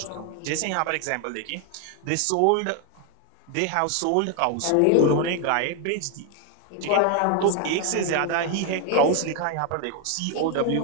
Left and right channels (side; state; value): both; different; correlation 0.01